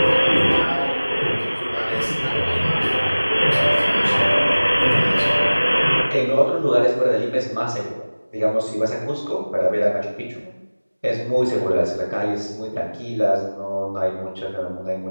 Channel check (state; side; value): inverted; both; correlation -1.00